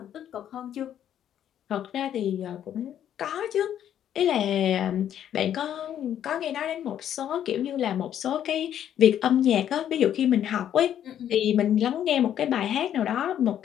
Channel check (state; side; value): quieter; right; 10.3 dB